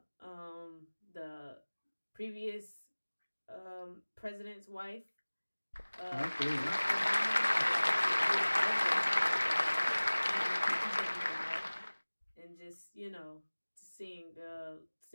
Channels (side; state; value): both; inverted; correlation -1.00